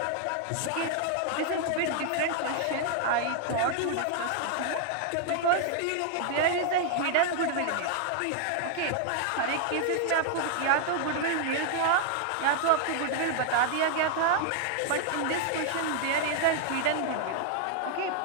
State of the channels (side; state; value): both; different; correlation 0.00